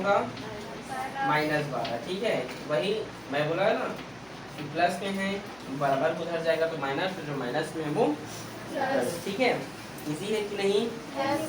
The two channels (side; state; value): right; noise; hum, 27 dB below the sound